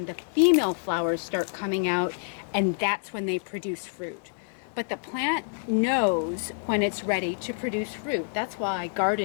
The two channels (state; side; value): silent; right; digital silence